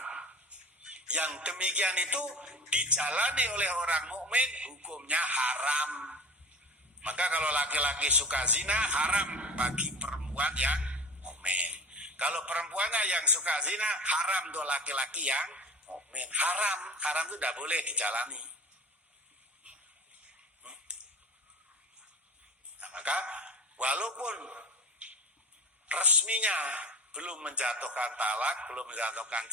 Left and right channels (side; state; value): both; normal; correlation 0.35